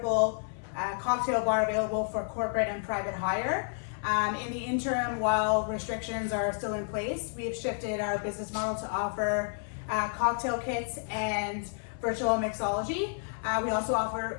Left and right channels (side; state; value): right; silent; 57 dB below the other